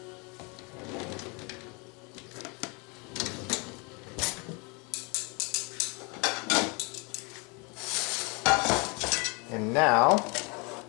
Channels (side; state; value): right; quieter; 30.7 dB